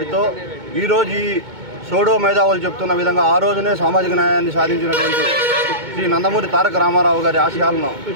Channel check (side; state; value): left; late; 2.2 ms